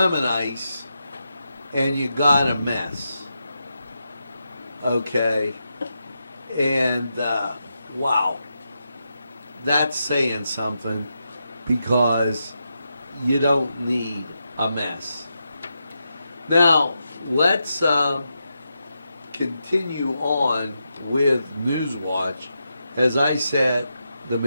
ice, and you got a mess. Okay. And, wow. That's saying something, because you don't need a mess. Now, let's continue on with Newswatch as I set the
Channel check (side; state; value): both; inverted; correlation -0.86